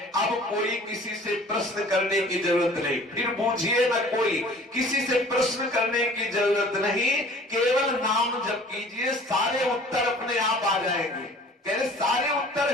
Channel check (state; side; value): normal; both; correlation 0.49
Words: अब कोई किसी से प्रश्न करने की जरूरत नहीं, फिर बूझिए ना, कोई किसी से प्रश्न करने की जरूरत नहीं, केवल नाम जप कीजिए, सारे उत्तर अपने आप आ जाएंगे। कह रहे सारे